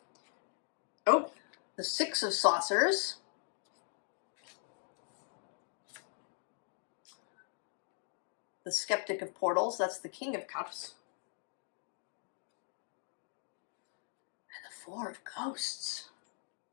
Oh, the Six of Saucers. The Skeptic of Portals. That's the King of Cups. And the Four of Ghosts,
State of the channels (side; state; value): right; silent; 51 dB below the other